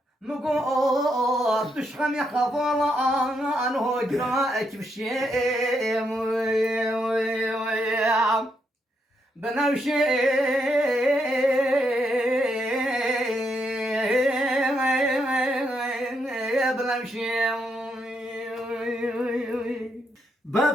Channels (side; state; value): both; normal; correlation 0.79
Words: مقوس تشخم يخفر عنه جراءك بشي بنمشي